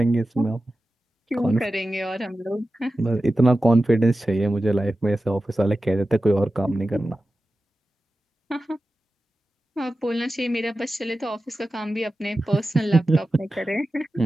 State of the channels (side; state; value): both; normal; correlation 0.94